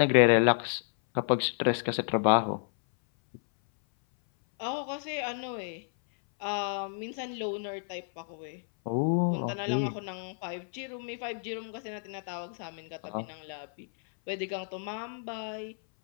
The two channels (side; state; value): right; silent; 57 dB below the other